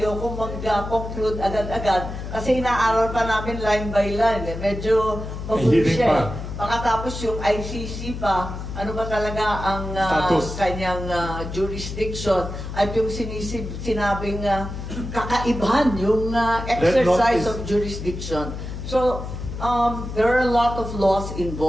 mag-conclude agad-agad kasi inaaral pa namin line by line. Medyo mabuti siya Pagkatapos yung ICC pa, ano ba talaga ang kanyang jurisdiction at yung sinabing kakaibahan, yung exercise of jurisdiction. So, there are a lot of laws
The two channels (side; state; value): left; noise; hum, 7 dB below the sound